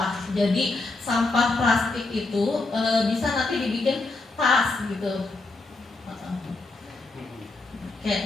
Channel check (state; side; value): quieter; right; 3.3 dB